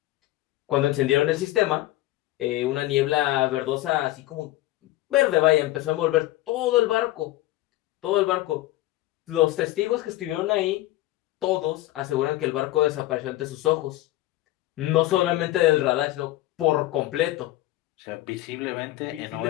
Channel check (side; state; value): right; quieter; 16.6 dB